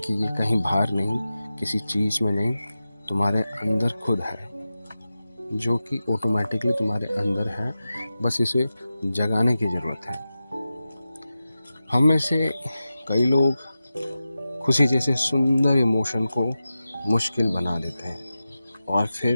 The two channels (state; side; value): inverted; both; correlation -0.93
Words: ये कहीं बाहर नहीं, किसी चीज़ में नहीं, तुम्हारे अंदर खुद है, जो कि ऑटोमेटिकली तुम्हारे अंदर है। बस इसे जगाने की ज़रूरत है। हम में से कई लोग खुशी जैसे सुंदर इमोशन को मुश्किल बना देते हैं और